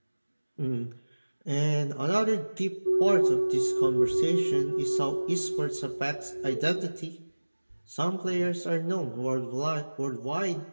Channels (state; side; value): inverted; both; correlation -1.00